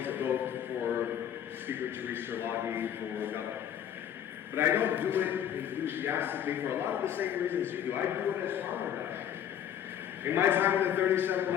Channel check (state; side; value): quieter; right; 9.7 dB